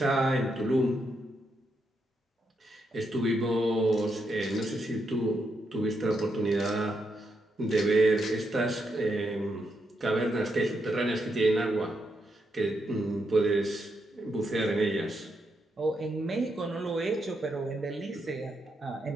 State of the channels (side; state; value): both; normal; correlation 0.80